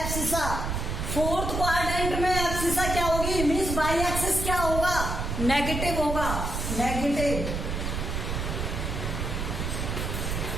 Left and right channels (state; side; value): noise; right; rumble, 2 dB below the sound